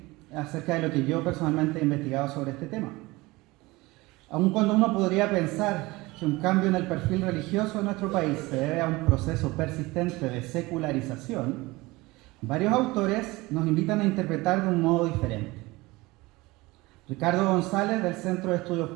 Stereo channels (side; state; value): left; quieter; 21.6 dB